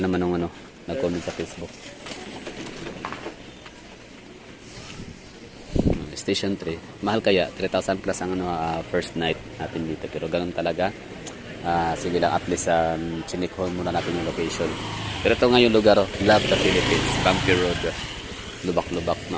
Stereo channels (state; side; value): identical; both; correlation 1.00